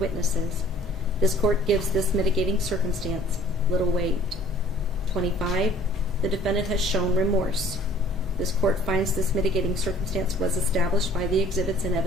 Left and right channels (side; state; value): both; normal; correlation 0.53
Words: This court gives this mitigating circumstance little weight. 25. The defendant has shown remorse. This court finds this mitigating circumstance was established by the exhibits and